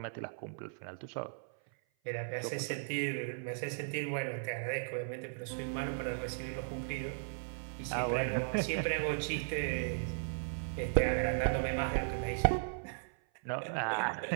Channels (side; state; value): left; silent; 53 dB below the other